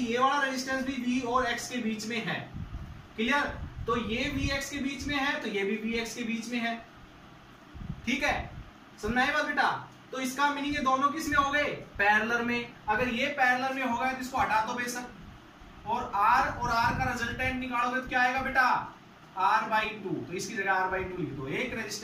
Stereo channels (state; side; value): identical; both; correlation 1.00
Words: वाला रेजिस्टेंस भी v और x के बीच में है। क्लियर। तो ये vx के बीच में है तो ये भी vx के बीच में है। ठीक है, समझना है बात बेटा। तो इसका मीनिंग ये दोनों किस में हो गए, पैरेलल में। अगर ये पैरेलल में होगा तो इसको हटा दो बेशक, और R का रिजल्टेंट निकालोगे तो क्या आएगा बेटा, R/2। तो इसकी जगह R/2 लिख दो, एक